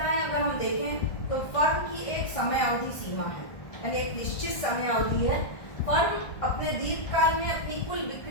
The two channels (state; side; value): late; right; 1.5 ms